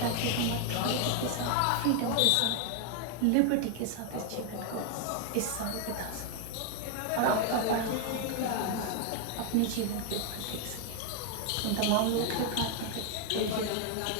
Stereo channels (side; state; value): both; different; correlation 0.00